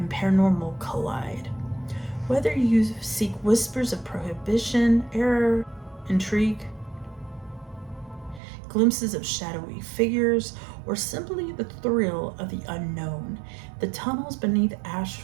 paranormal collide. Whether you seek whispers of prohibition, error, intrigue, glimpses of shadowy figures, or simply the thrill of the unknown, the tunnels beneath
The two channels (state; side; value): drops out; left; at 8.4 s